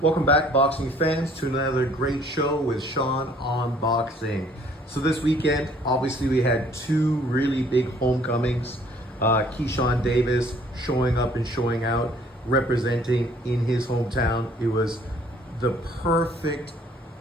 Welcome back, boxing fans, to another great show with Sean on Boxing. So this weekend, obviously, we had two really big homecomings. Keyshawn Davis showing up and showing out, representing in his hometown. It was the perfect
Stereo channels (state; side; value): normal; both; correlation 0.59